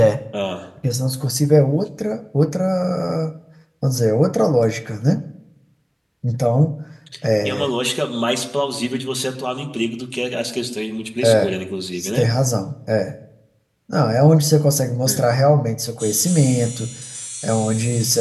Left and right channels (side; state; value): both; identical; correlation 1.00